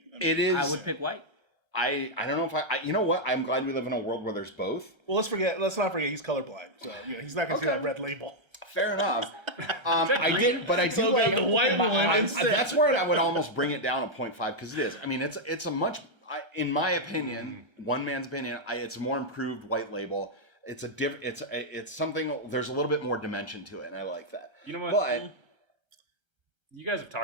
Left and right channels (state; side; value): late; left; 1.3 ms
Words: I mean, It is. I would pick white. I don't know if I. You know what? I'm glad we live in a world where there's both. well, let's not forget he's colorblind, so he's not gonna see Okay. that red label. Fair enough. I did, but I do So like the white one I- instead. That's where I would almost bring it down a 0.5 because it is. I mean, it's a much, in my opinion, one man's opinion, it's a more improved white label. It's a different. It's something. There's a little bit more dimension to it, and I like that. You know what? But You guys have